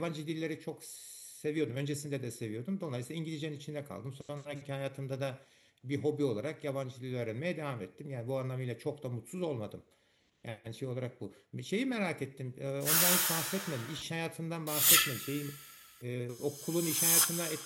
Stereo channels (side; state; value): both; identical; correlation 1.00